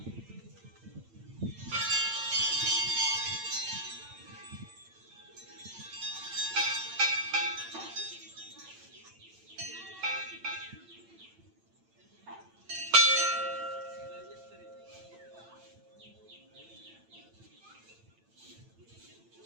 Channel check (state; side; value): late; left; 8.9 ms